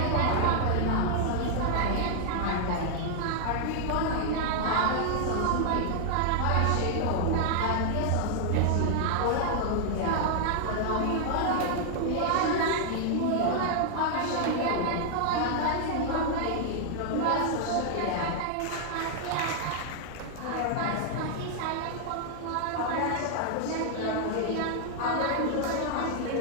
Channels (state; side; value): different; both; correlation 0.00